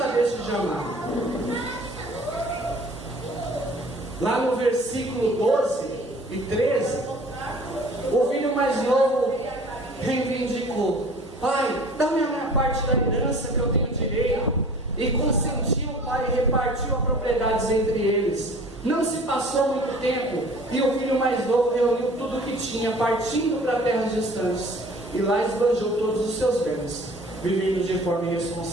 deixa de amar. Lá no versículo 12 e 13, o filho mais novo reivindicou: pai, dá-me a minha parte da herança que eu tenho direito. E consentiu o pai e repartiu as propriedades entre eles. Não se passou muito tempo e o filho mais novo reuniu tudo o que tinha, partindo para terras distantes, e lá esbanjou todos os seus bens, vivendo de forma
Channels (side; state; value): both; normal; correlation 0.48